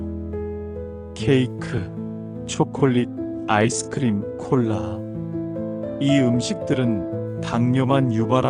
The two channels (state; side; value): identical; both; correlation 1.00